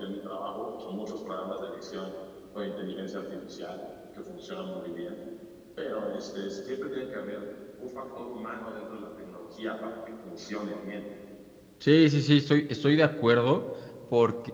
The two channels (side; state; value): both; identical; correlation 1.00